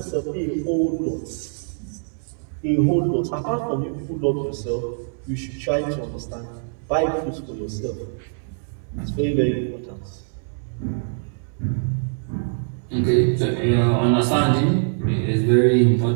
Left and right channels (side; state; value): left; silent; 63 dB below the other